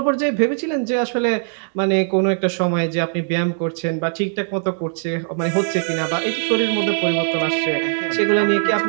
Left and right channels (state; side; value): silent; left; digital silence